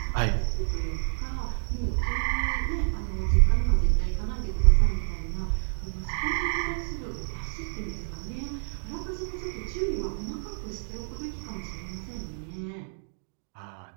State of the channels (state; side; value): silent; left; digital silence